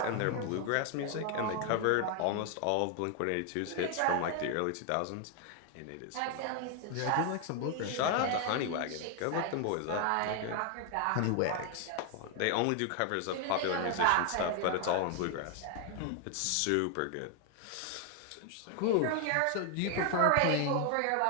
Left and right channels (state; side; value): different; both; correlation 0.00